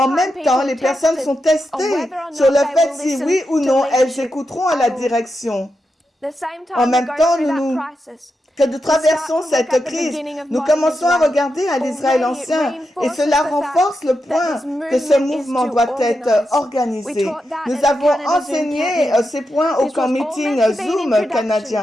même temps, les personnes sont testées sur le fait si oui ou non elles écouteront à la direction. En même temps, que nous traversons cette crise, nous commençons à regarder à l'Israël ancien et cela renforce le point que ce mouvement doit être organisé. Nous avons enseigné ces points au camp meeting Zoom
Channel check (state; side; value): normal; both; correlation 0.87